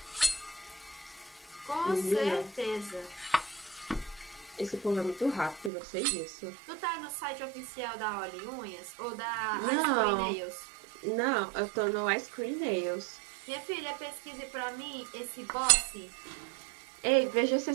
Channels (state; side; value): drops out; left; at 5.7 s